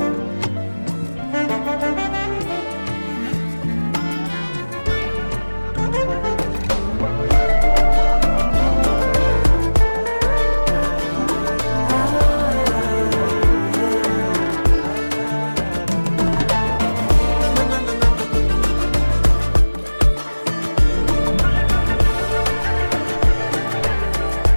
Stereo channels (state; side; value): inverted; both; correlation -1.00